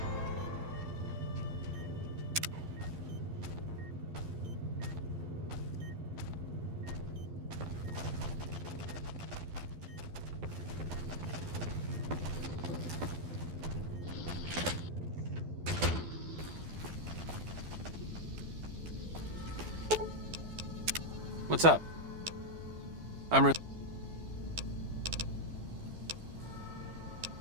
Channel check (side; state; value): left; late; 12 ms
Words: What's up? I'm re-